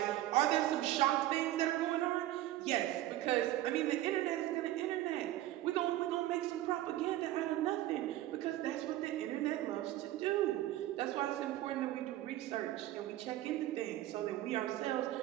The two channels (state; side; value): quieter; left; 14.8 dB